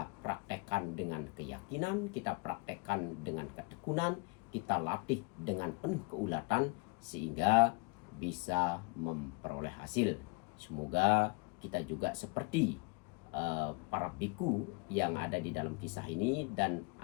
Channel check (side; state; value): right; quieter; 28.7 dB